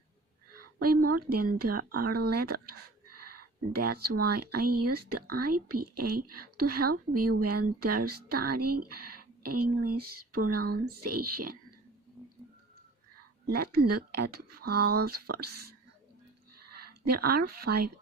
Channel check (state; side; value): quieter; left; 3.0 dB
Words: way more than there are letters. That's why I use the IPA to help you when they're studying English pronunciation. Let's look at vowels first. There are 5